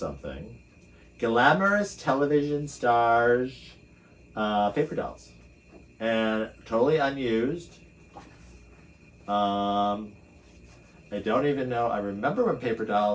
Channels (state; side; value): identical; both; correlation 1.00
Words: Glamorous television stars, paper dolls. And totally unused. I don't even know. I remember when paper